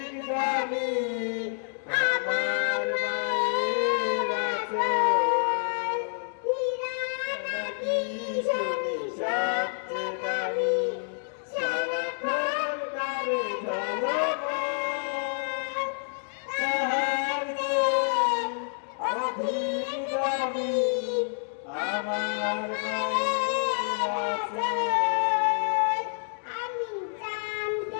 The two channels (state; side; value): silent; right; digital silence